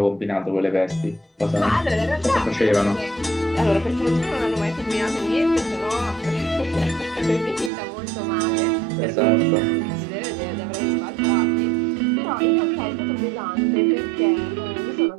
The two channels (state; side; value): drops out; left; at 7.7 s